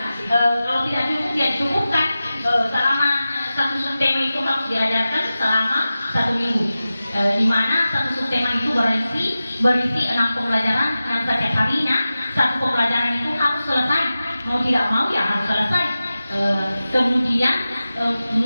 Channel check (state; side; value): inverted; both; correlation -0.95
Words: Kalau tidak cukup ya cukupkan selama satu subtema itu harus diajarkan selama 1 minggu. Di mana satu subtema itu berisi 6 pembelajaran yang setiap harinya satu pembelajaran itu harus selesai. Mau tidak mau ya harus selesai. Kemudian